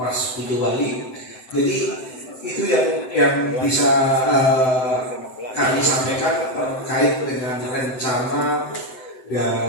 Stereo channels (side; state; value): right; late; 7.8 ms